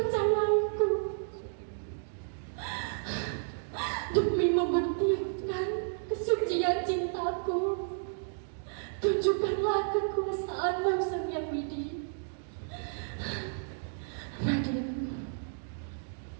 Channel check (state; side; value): silent; left; digital silence